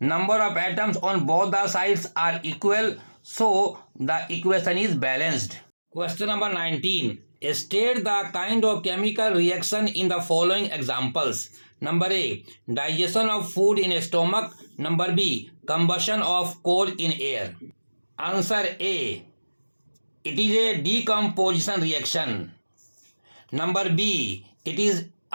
of atoms on both the sides are equal. So the equation is balanced. Question number 19. State the kind of chemical reaction in the following examples. Number A. Digestion of food in a stomach. Number B. Combustion of coal in air. Answer A. It is a decomposition reaction. Number B. It is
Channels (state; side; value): inverted; both; correlation -1.00